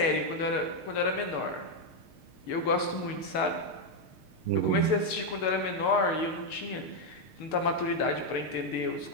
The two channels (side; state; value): right; late; 6.5 ms